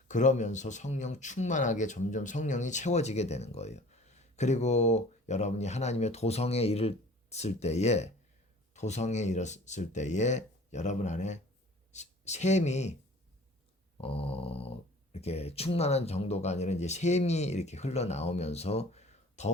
그러면서 성령 충만하게 점점 성령이 채워지게 되는 거예요. 그리고 여러분이 하나님의 도성에 이르렀을 때에 여러분 안에 샘이 이렇게 충만한 정도가 아니라 이제 샘이 이렇게 흘러나오면서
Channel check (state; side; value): normal; both; correlation 0.47